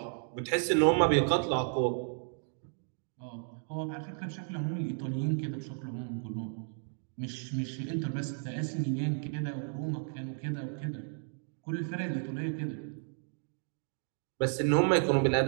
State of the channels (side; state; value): left; silent; 56 dB below the other